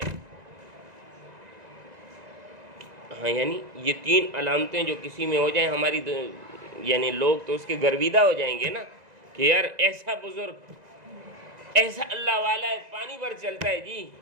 ہاں، یعنی یہ تین علامتیں جو کسی میں ہو جائیں ہماری یعنی لوگ تو اس کے گرویدہ ہو جائیں گے نا کہ یار ایسا بزرگ، ایسا اللہ والا ہے، پانی پر چلتا ہے جی،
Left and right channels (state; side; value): late; left; 2.0 ms